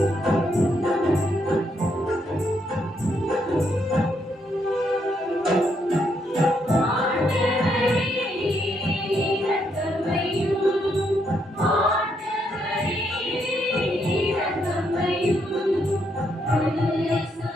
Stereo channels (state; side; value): normal; both; correlation 0.76